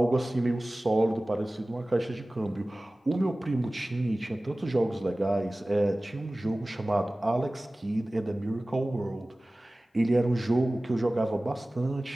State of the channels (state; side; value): normal; both; correlation 0.98